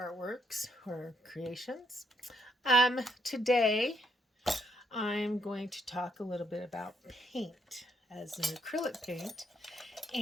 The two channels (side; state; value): both; normal; correlation 0.73